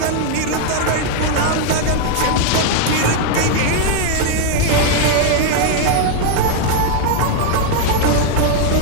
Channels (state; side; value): different; both; correlation 0.00